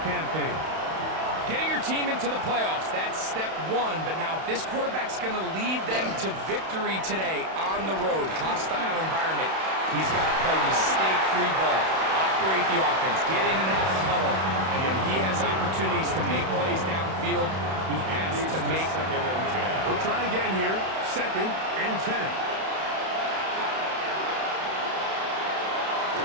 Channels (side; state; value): left; late; 31 ms